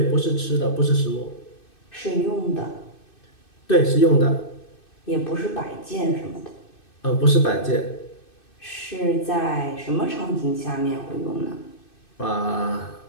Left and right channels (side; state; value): right; late; 2.6 ms